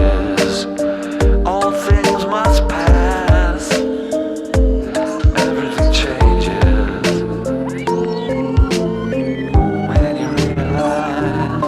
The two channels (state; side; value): identical; both; correlation 1.00